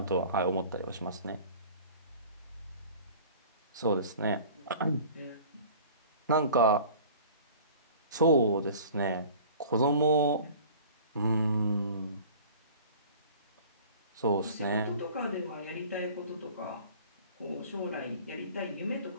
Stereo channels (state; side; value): inverted; both; correlation -0.45